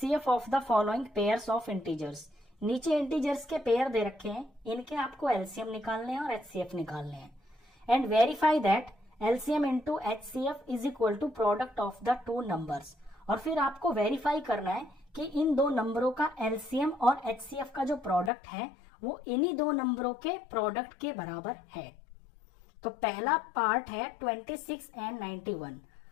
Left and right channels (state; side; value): drops out; right; at 18.3 s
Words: of the following pairs of integers. नीचे integers के pair दे रखे हैं, इनके आपको एलसीएम निकालने हैं और एचसीएफ निकालने हैं। And verify that LCM into HCF is equal to product of the two numbers. और फिर आपको वेरीफाई करना है कि इन दो नंबरों का एलसीएम और एचसीएफ का जो प्रोडक्ट है वो इन्हीं दो नंबरों के प्रोडक्ट के बराबर है। तो पहला पार्ट है 26 एंड 91।